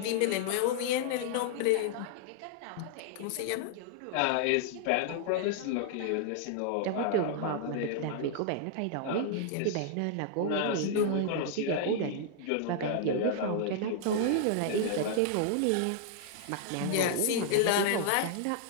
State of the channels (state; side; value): different; both; correlation -0.01